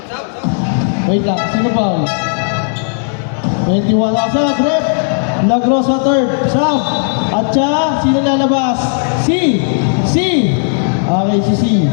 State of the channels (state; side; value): silent; right; digital silence